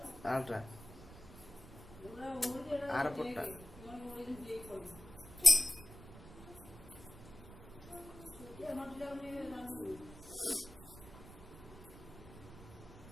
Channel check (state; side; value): noise; right; rumble, 16 dB below the sound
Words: ଆରଟା ଆର ପଟଟା।